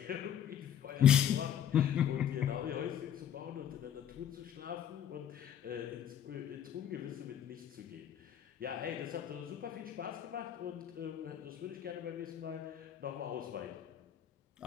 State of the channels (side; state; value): right; quieter; 9.8 dB